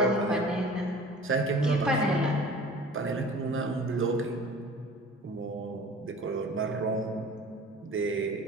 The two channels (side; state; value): both; normal; correlation 0.44